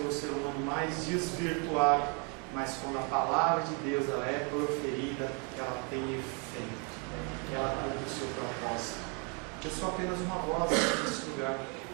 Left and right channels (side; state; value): left; quieter; 33.1 dB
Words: ser humano mais desvirtuado, mas quando a palavra de Deus ela é proferida, ela tem efeito, ela cumpre o seu propósito. Eu sou apenas uma voz nesse lugar,